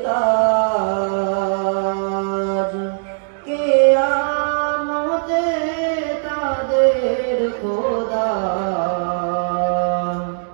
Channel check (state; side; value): silent; left; digital silence